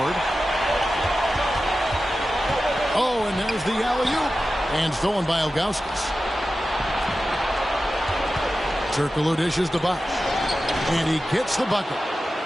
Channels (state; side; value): normal; both; correlation 0.93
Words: Oh, and there's the alley-oop. And stolen by Ilgauskas. Turkoglu dishes to Bosch. And he gets the bucket.